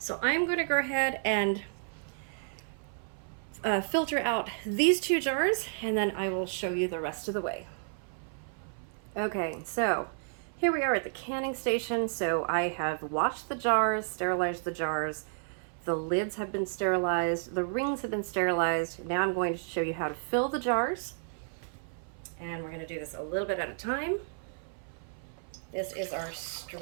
I'm gonna go ahead and filter out these 2 jars, and then I will show you the rest of the way. Okay, so here we are at the canning station. So I have washed the jars, sterilized the jars. The lids have been sterilized. The rings have been sterilized. Now I'm going to show you how to fill the jars. And we're going to do this a little bit at a time. This is our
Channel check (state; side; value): silent; left; 56 dB below the other